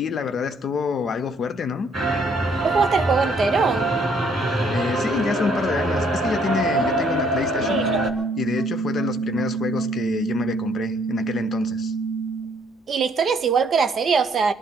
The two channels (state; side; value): normal; both; correlation 0.65